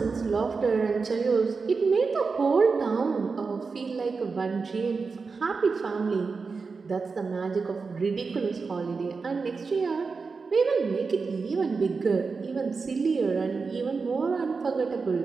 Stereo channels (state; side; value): quieter; left; 4.7 dB